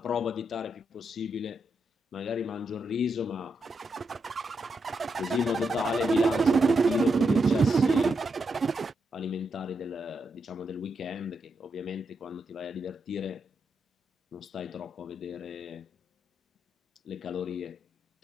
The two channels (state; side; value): normal; both; correlation 0.82